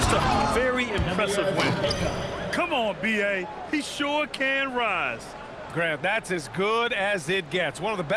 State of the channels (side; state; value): both; identical; correlation 1.00